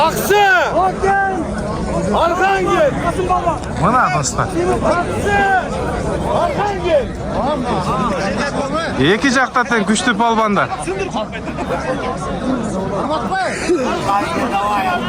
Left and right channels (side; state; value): both; identical; correlation 1.00